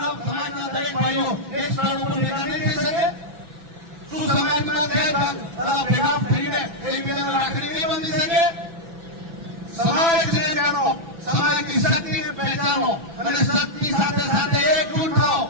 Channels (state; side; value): late; left; 6.0 ms